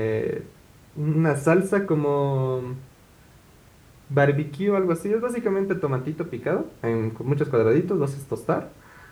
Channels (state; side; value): identical; both; correlation 1.00